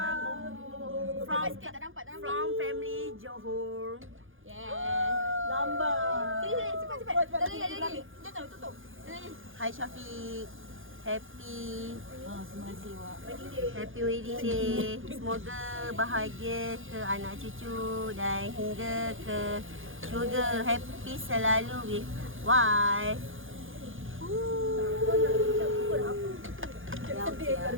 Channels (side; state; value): left; late; 0.58 ms